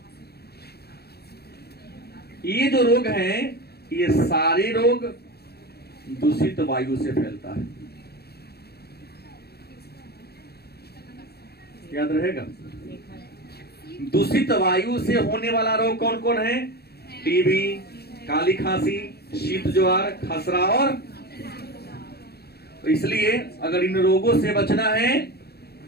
ये जो रोग हैं, ये सारे रोग दूषित वायु से फैलता है, याद रहेगा। दूषित वायु से होने वाला रोग कौन कौन है, टीबी, काली खांसी, शीत ज्वार, खसरा और। तो इसलिए अगर इन रोगों से बचना है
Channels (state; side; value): late; right; 0.46 ms